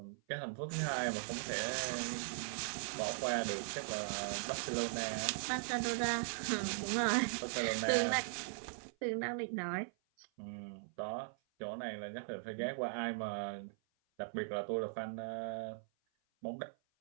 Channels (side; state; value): left; silent; 51 dB below the other